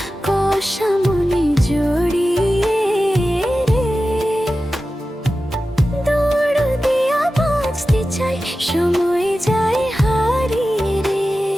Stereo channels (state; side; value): normal; both; correlation 0.94